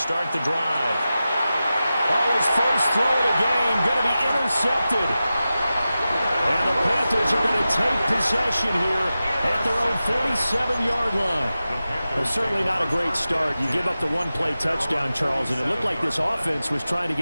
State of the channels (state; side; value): inverted; both; correlation -0.94